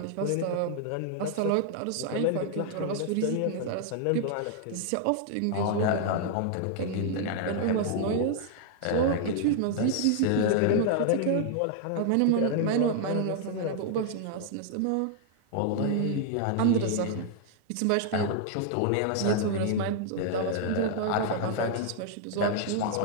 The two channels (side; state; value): both; different; correlation 0.00